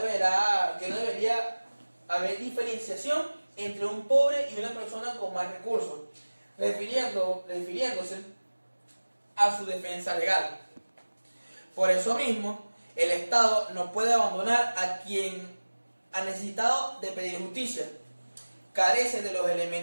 haber diferenciación entre un pobre y una persona con más recursos, refiriéndose a su defensa legal. Por eso mismo, el Estado no puede abandonar a quien ha necesitado de pedir justicia. Carece de los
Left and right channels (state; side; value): inverted; both; correlation -1.00